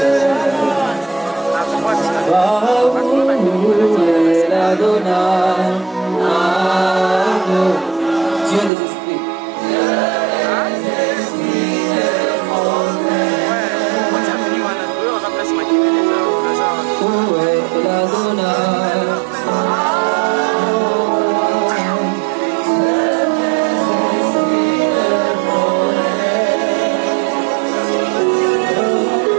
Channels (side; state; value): left; drops out; at 8.7 s